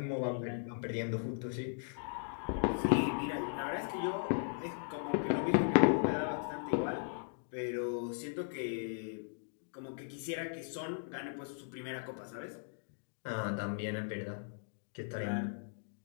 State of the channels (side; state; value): right; silent; digital silence